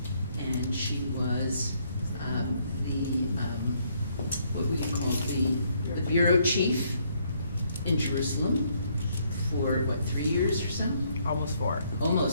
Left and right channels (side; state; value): both; inverted; correlation -0.70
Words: and she was what we call the bureau chief in Jerusalem for, 3 years or so? Almost 4.